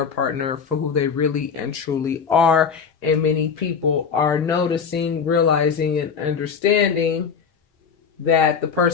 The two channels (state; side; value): quieter; right; 6.3 dB